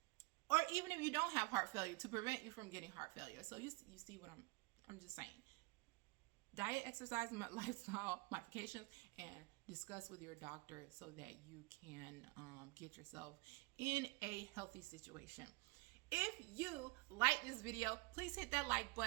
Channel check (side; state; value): left; quieter; 26.2 dB